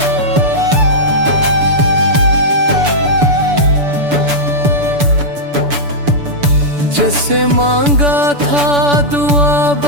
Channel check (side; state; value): left; late; 6.9 ms